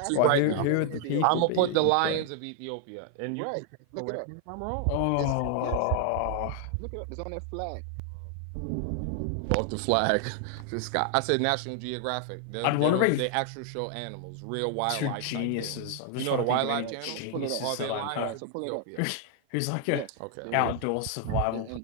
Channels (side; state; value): both; different; correlation 0.00